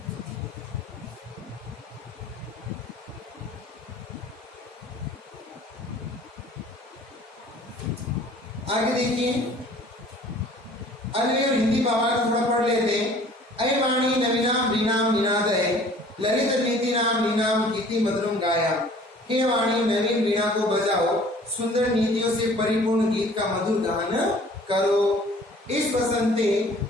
आगे देखिए, अन्य और हिंदी भावार्थ थोड़ा पढ़ लेते हैं। अय वाणी नवीनाम वीणाम निनादय ललित नीति नाम नीनाम गीति मधुरम गाया। हे वाणी नवीन वीणा को बजाओ, सुंदर नीतियों से परिपूर्ण गीत का मधुर गान करो। इस बसंते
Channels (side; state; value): both; normal; correlation 0.51